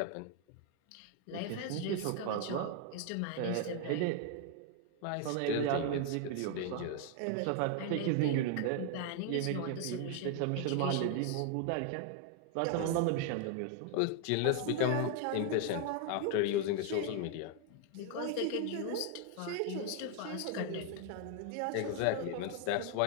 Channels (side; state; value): both; different; correlation 0.00